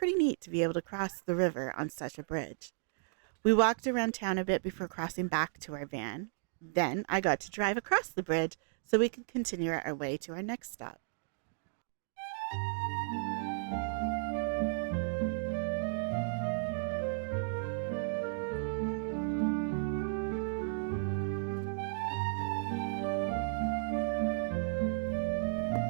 neat to be able to cross the river on such a bridge. We walked around town a bit before crossing back to our van. Then I got to drive across the bridge so we could continue our way to our next stop.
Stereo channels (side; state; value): left; silent; digital silence